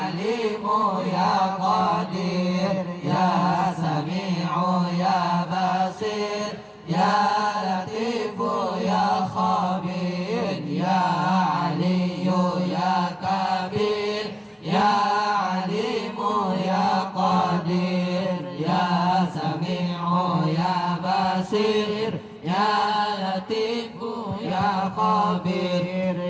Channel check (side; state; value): both; identical; correlation 1.00